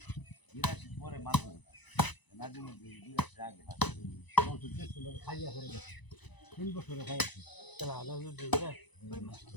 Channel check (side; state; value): right; late; 1.0 ms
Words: পরে মারবো নাজমুল বিরাশ আগে খাইয়া করে গেছে 3 বছরে খাইছে চলা নাজমুল বিরাশ